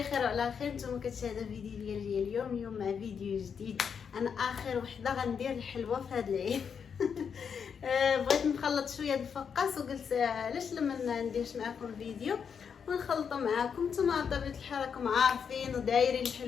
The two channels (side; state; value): right; quieter; 6.8 dB